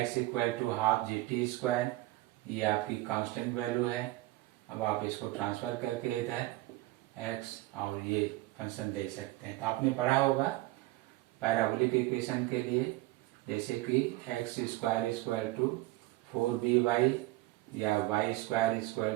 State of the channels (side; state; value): left; quieter; 18.7 dB